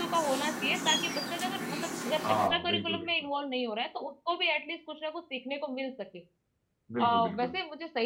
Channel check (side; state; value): both; identical; correlation 1.00